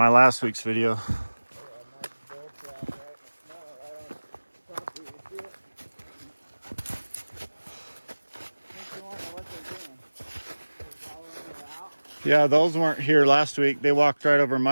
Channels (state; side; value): inverted; both; correlation -1.00